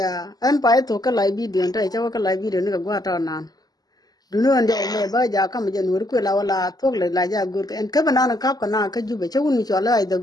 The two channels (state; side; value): late; right; 0.19 ms